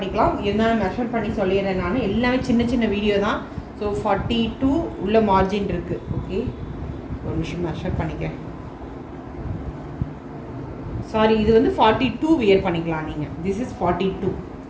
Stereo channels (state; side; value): identical; both; correlation 1.00